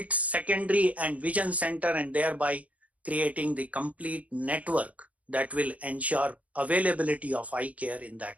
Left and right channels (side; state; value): left; late; 0.069 ms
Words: secondary and vision center, and thereby creating the complete network that will ensure availability of eye care in